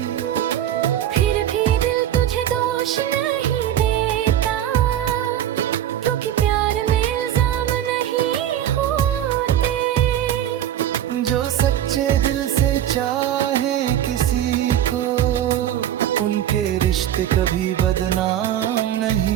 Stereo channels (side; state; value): left; quieter; 11.3 dB